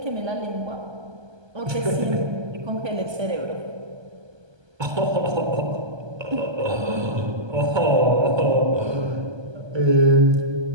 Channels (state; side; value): late; left; 1.3 ms